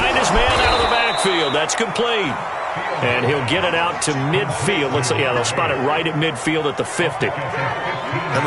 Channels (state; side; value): identical; both; correlation 1.00